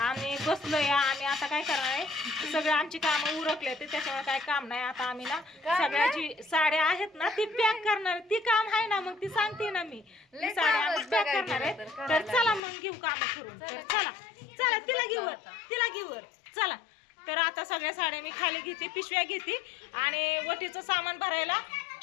आम्ही बसलो या. आणि आता काय करणार आहे, सगळे आमची कामं उरकले ते, त्याच्यामुळे काय काम नाही. आता आम्ही ना सगळ्याची साड्या आहेत ना ती पॅक करणार. ती काम आहे ना, मग ती सांगते ना मी, ती साड्या आम्ही पॅक करणार आहे. तर चला मग घेऊ काम करून. तर चला चला, तिला घेऊ चला. तर आता सगळ्या साड्या मी खाली घेते, पिशव्या घेते आणि वटीचं सामान भरायला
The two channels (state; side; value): drops out; right; at 12.6 s